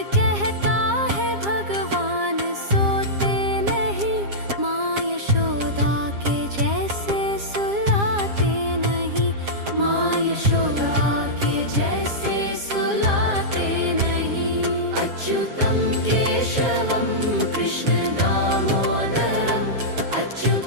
कहता है भगवान सोते नहीं, माँ यशोदा के जैसे सुलाते नहीं, माँ यशोदा के जैसे सुलाते नहीं। अच्युतं केशवं कृष्ण दामोदरं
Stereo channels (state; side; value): late; left; 7.4 ms